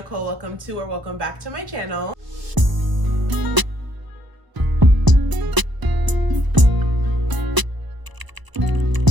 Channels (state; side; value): late; left; 1.0 ms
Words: Welcome back to my channel.